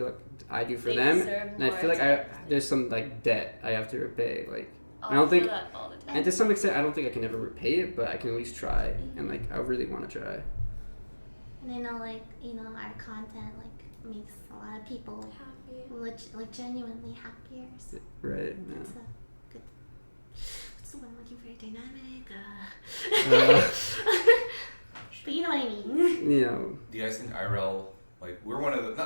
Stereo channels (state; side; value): inverted; both; correlation -1.00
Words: like I do for They them. deserve And I more feel like attention. there's some like debt I have to repay. Like, Oh, I don't feel think, that all the time. and to some extent, I don't think I can ever repay it, but I can at least try. Mm-hmm. And like, I really want to try. And I know, like, you know, our content like makes a lot of people like genuinely happier. So Right? it's Yeah. a good. What's the one I'm looking for? Dynamic. But you know what I mean. You know, Do you guys think IRL, like, we're one of the,